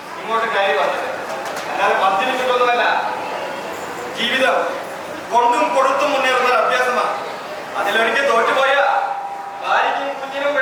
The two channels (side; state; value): both; identical; correlation 1.00